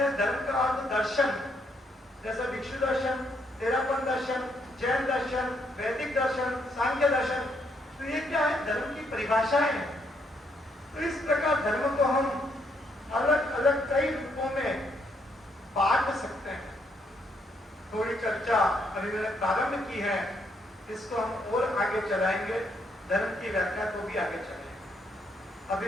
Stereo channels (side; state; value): both; normal; correlation 0.73